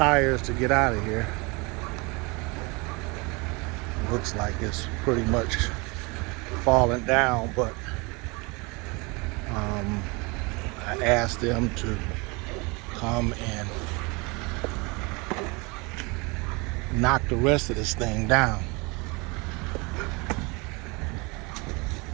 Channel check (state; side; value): quieter; left; 27.7 dB